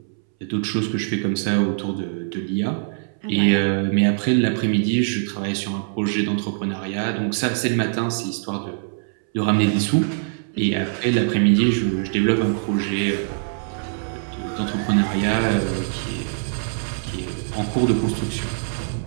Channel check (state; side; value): silent; left; 64 dB below the other